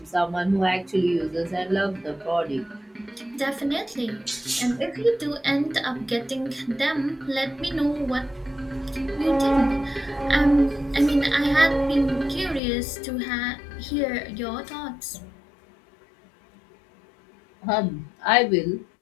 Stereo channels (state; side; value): drops out; right; at 12.6 s